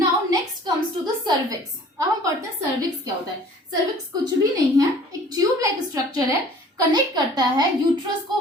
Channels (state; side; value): normal; both; correlation 0.50